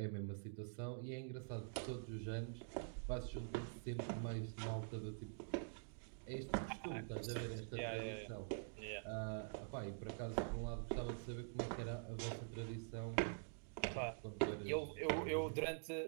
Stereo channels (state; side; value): silent; left; digital silence